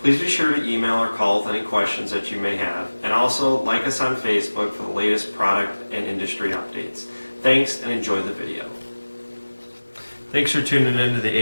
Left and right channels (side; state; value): both; inverted; correlation -1.00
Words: Please be sure to email or call with any questions that you may have, and also like us on Facebook for the latest product and industry updates. Thanks, and enjoy the video. Thanks for tuning in to